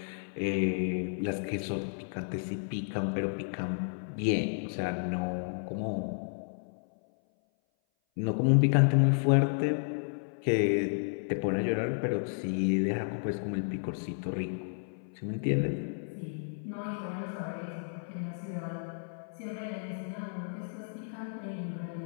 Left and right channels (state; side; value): silent; right; 56 dB below the other